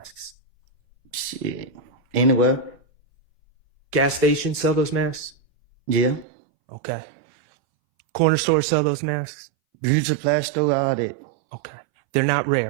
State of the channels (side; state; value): left; drops out; at 6.2 s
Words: Shit. Anywhere. Gas stations sell those masks? Yeah. Okay. Corner stores sell those masks? Beauty supply store, all that. Okay. They're not